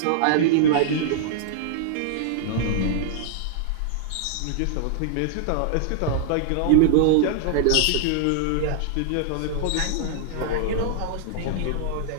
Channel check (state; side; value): different; both; correlation -0.01